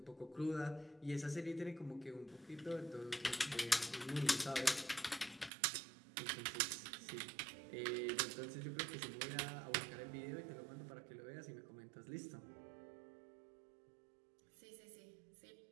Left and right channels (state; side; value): drops out; left; at 5.5 s